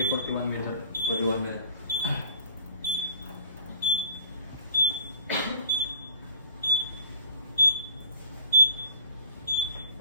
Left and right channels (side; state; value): both; inverted; correlation -0.48